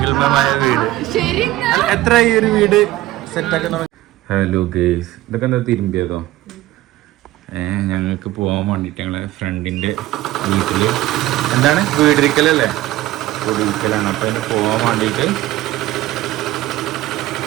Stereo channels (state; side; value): quieter; left; 16.1 dB